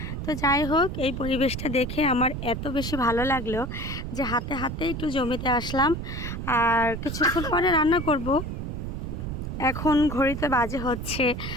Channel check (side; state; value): right; noise; rumble, 5 dB below the sound